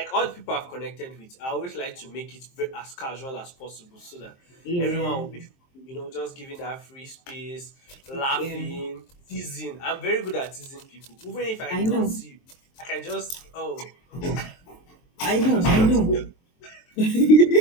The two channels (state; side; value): late; right; 23 ms